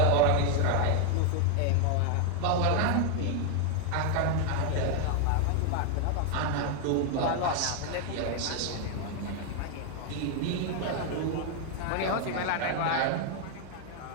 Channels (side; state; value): both; different; correlation 0.00